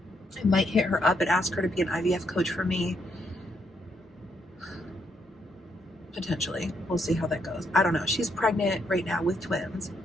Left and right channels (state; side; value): normal; both; correlation 0.75